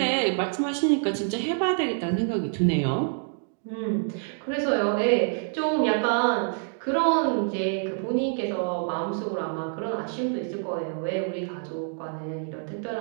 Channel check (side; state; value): left; silent; 60 dB below the other